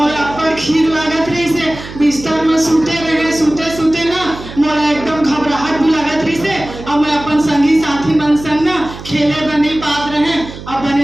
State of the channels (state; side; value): noise; right; hum, 13 dB below the sound